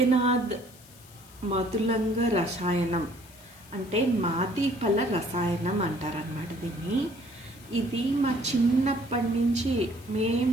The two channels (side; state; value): left; noise; hiss, 23 dB below the sound